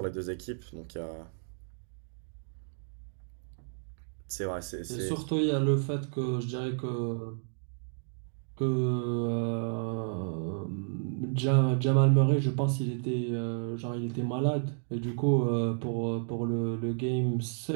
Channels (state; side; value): silent; left; digital silence